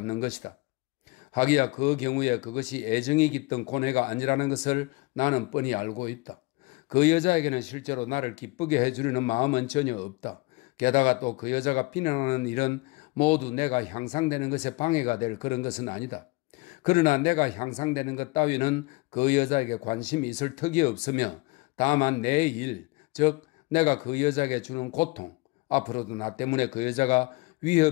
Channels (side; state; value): right; quieter; 24.5 dB